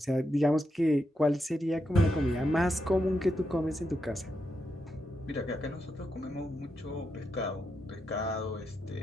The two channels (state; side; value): normal; both; correlation 0.84